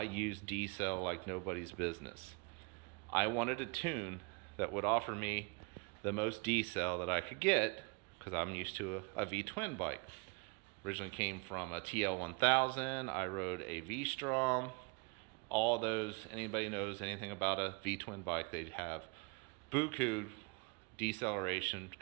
use D-cell like nobody's business. I wanted a tune that would offer me the most D-cell that I could get, because I'm used to a V-twin bike. Originally came from a TL1000. I rode a V-Strom. All those, anybody knows anything about a V-twin bike, they'd have buku deceleration,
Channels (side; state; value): left; quieter; 31.9 dB